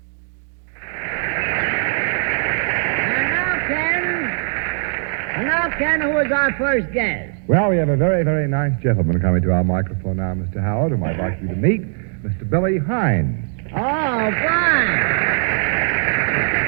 And now, Ken, who is our first guest? Well, we have a very, very nice gentleman coming to our microphone now, Mr. Howard, whom I'd like you to meet, Mr. Billy Hines. Oh, fine.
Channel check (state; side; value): silent; left; 59 dB below the other